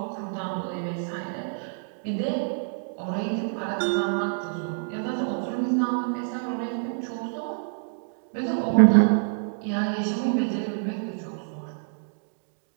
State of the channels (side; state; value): left; silent; digital silence